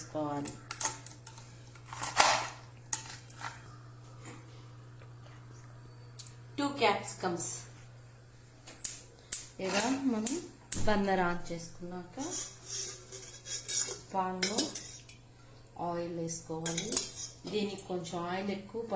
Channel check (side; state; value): both; identical; correlation 1.00